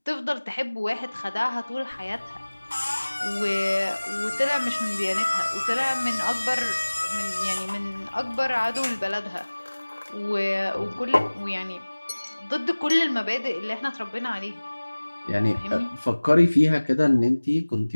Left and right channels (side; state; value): both; inverted; correlation -1.00